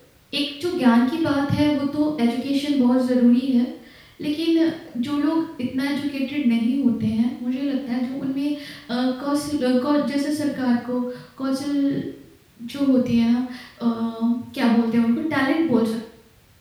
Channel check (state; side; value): identical; both; correlation 1.00